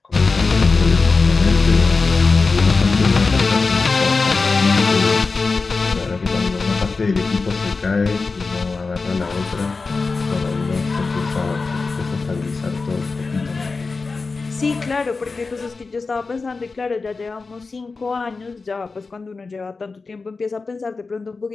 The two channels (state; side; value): quieter; right; 4.2 dB